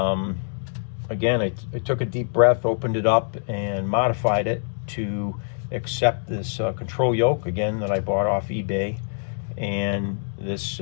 again, I took a deep breath, opened it up, and modified it to accept this control yoke, again, that I bought off eBay, and this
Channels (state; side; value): silent; right; digital silence